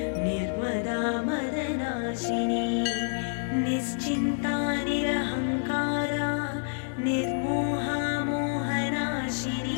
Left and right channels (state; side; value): silent; right; 59 dB below the other